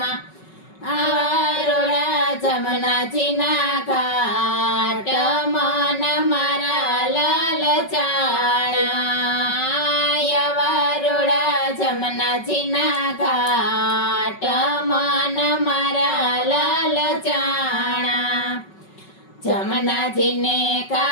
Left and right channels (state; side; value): late; right; 5.3 ms